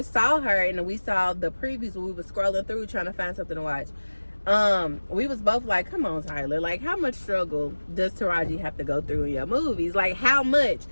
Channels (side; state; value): both; inverted; correlation -1.00